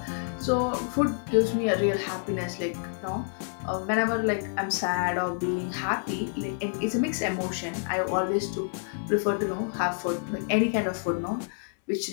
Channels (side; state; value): right; silent; 59 dB below the other